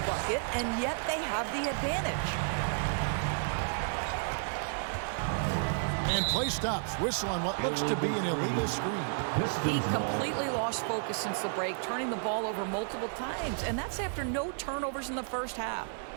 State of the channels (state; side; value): silent; left; 56 dB below the other